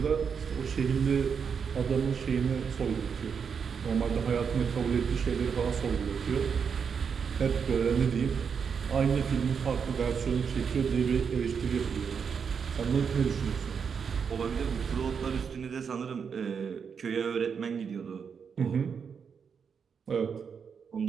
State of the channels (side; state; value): left; quieter; 6.5 dB